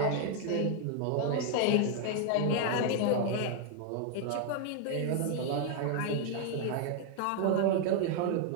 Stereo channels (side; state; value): both; different; correlation 0.00